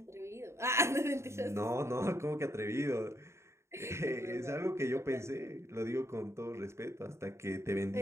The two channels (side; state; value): left; late; 0.13 ms